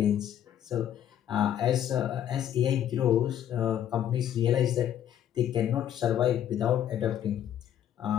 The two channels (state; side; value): quieter; right; 10.5 dB